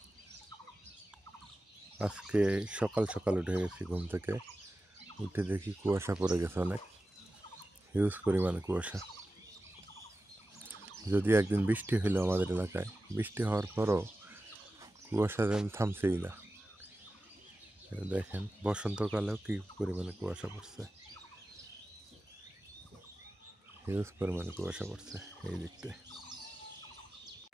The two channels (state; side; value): normal; both; correlation 0.94